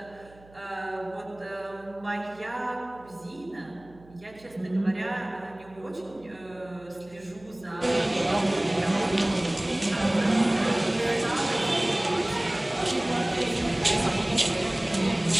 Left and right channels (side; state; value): right; noise; hum, 24 dB below the sound